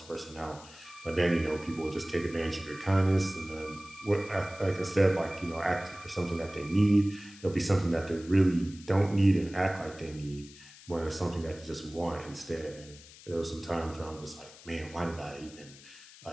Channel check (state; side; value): noise; left; hiss, 20 dB below the sound